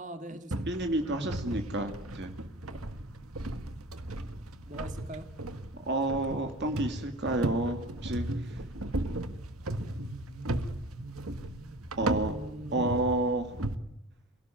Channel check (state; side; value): normal; both; correlation 0.38